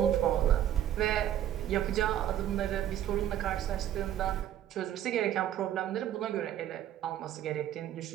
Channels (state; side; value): quieter; left; 11.4 dB